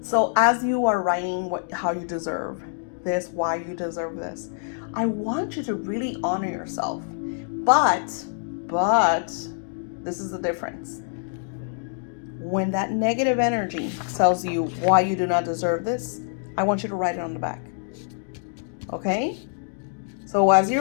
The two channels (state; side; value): silent; right; digital silence